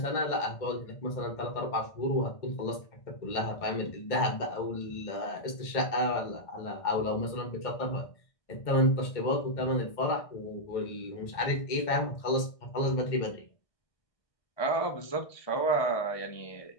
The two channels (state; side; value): late; right; 1.6 ms